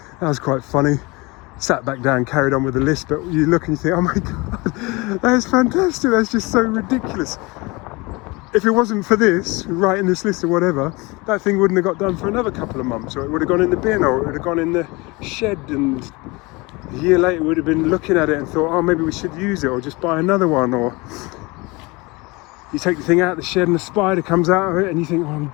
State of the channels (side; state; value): right; quieter; 24.9 dB